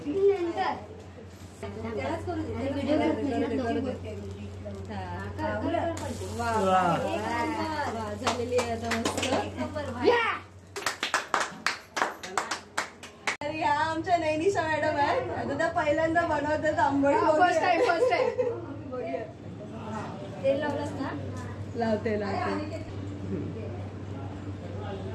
झालेली आहे आता मस्त. ह्या आमच्या नैनिशा मॅडम आहेत. आता त्या पहिल्यांदा बनवतात आंबोळी. फर्स्ट टाइम तेल लावलंस ना. लावते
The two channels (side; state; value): both; identical; correlation 1.00